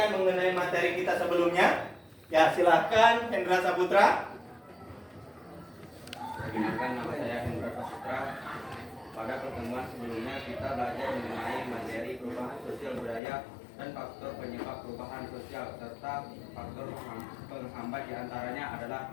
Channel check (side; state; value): right; drops out; at 13.2 s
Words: mengenai materi kita sebelumnya? Ya, silakan Hendra Saputra. Perkenalkan, nama saya Hendra Saputra. Pada pertemuan sebelumnya kita belajar mengenai materi perubahan sosial budaya dan faktor penyebab perubahan sosial serta faktor penghambat diantaranya adalah